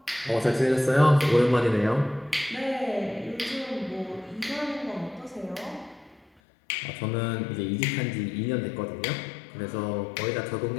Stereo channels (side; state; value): right; drops out; at 6.2 s